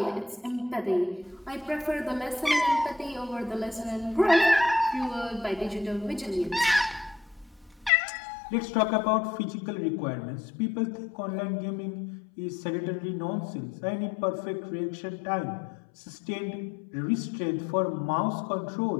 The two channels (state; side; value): drops out; right; at 7.9 s